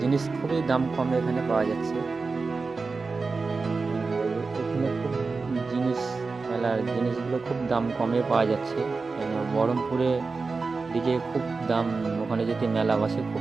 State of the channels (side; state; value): left; quieter; 4.2 dB